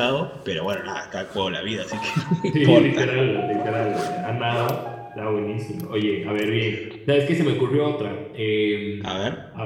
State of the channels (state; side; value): identical; both; correlation 1.00